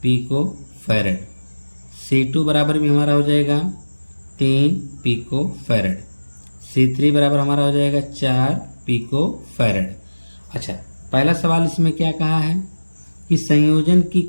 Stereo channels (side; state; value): both; inverted; correlation -1.00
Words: पिको फैराड, C2 बराबर भी हमारा हो जाएगा 3 पिको फैराड, C3 बराबर हमारा हो जाएगा 4 पिको फैराड। अच्छा, पहला सवाल इसमें क्या कहा है कि संयोजन की